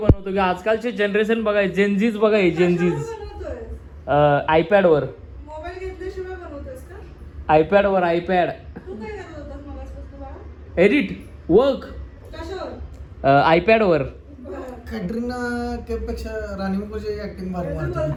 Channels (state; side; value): identical; both; correlation 1.00